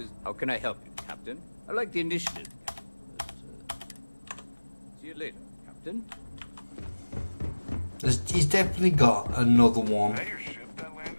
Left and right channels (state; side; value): inverted; both; correlation -1.00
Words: How can I help you, Captain? I like the initiative. See you later, Captain. He's definitely got another one. Is that your ship that